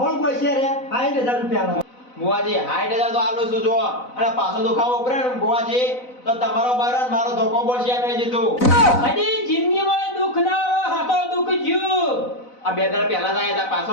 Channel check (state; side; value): late; right; 4.0 ms